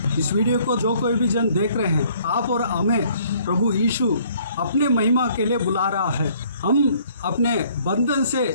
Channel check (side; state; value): both; inverted; correlation -0.60